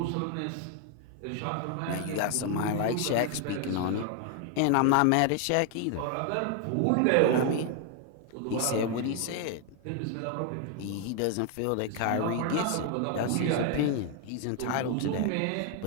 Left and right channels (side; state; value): both; different; correlation 0.01